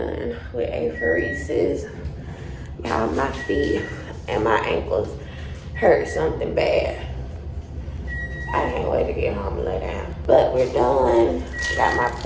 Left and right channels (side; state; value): both; identical; correlation 1.00